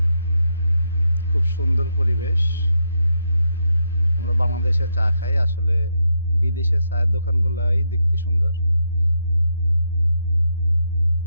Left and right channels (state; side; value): inverted; both; correlation -0.81